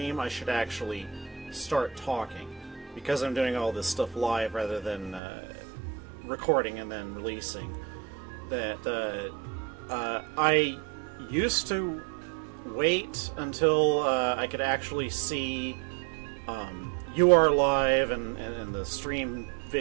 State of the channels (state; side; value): drops out; left; at 5.2 s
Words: I should actually start talking, because I'm doing all this stuff live rather than recording and then releasing. I used to wait until I could actually see you are live and the stream